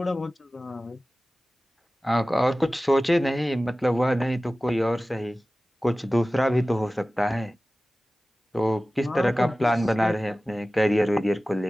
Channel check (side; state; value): both; normal; correlation 0.97